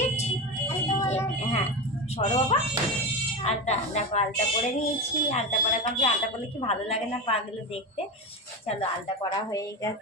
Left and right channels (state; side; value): normal; both; correlation 0.20